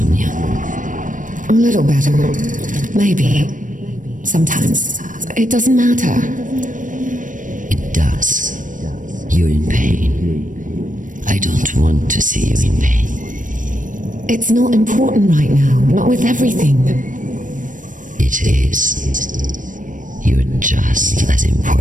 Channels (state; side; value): late; left; 0.38 ms